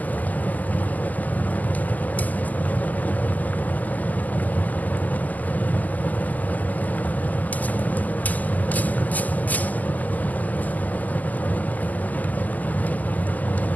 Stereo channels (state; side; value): late; right; 0.080 ms